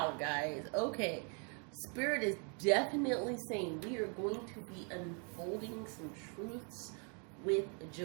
guys. Okay. Spirit is definitely saying we are going to be unfolding some truths with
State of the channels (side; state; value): left; quieter; 39.2 dB